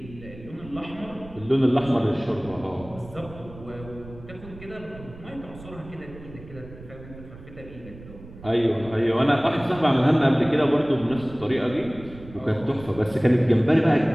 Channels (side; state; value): right; noise; rumble, 17 dB below the sound